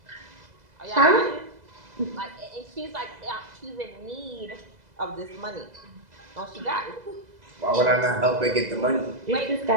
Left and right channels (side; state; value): left; late; 2.0 ms